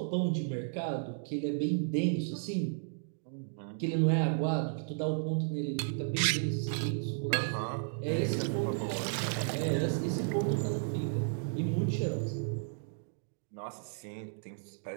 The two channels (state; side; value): silent; left; digital silence